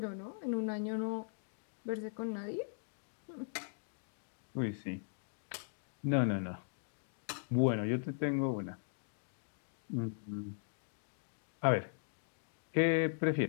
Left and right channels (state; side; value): silent; right; digital silence